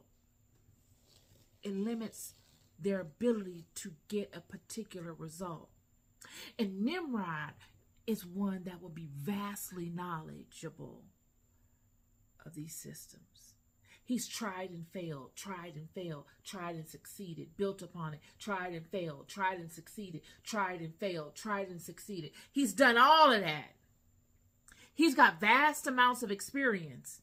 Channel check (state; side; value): identical; both; correlation 1.00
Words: It limits their ability to get a particular result. And Nimrod is one that will be vastly knowledgeable of these systems. He's tried and failed, tried and failed, tried and succeeded, built upon it, tried and failed, tried and succeeded, tried and failed, tried and succeeded. He's done all of that. He's got vast amounts of experience.